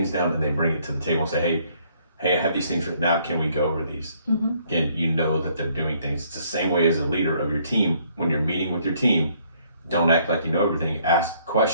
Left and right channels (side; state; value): both; inverted; correlation -0.65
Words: down, and they bring it to the table and say, hey, I have these things written out. Can we go over these? Again, you know that they're doing things. It's the same way as a leader of your team. When you're meeting with your team, don't act like you know everything. Ask